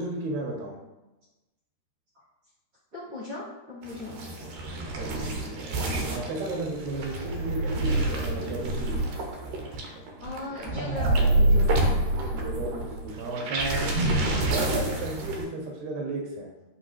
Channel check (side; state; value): left; late; 13 ms